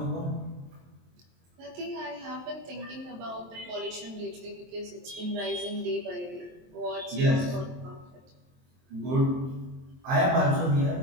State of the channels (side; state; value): left; late; 23 ms